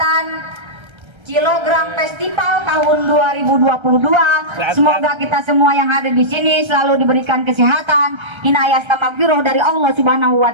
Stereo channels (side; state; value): left; late; 1.3 ms